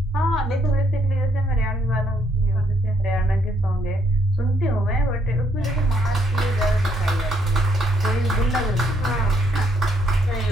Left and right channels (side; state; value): both; normal; correlation 0.71